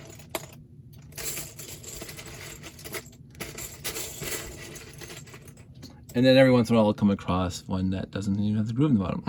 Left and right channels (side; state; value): both; identical; correlation 1.00